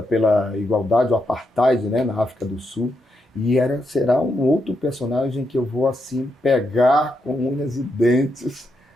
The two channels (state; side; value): normal; both; correlation 0.82